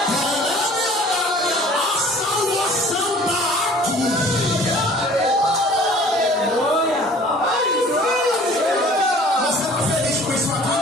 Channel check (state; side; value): normal; both; correlation 0.49